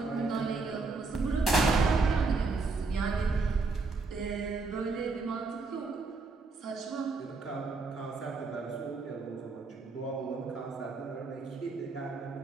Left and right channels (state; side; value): quieter; left; 4.0 dB